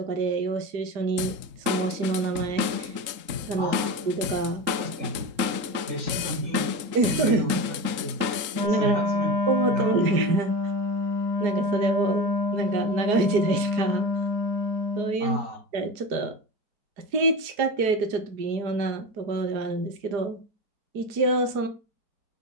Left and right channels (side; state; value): left; late; 3.8 ms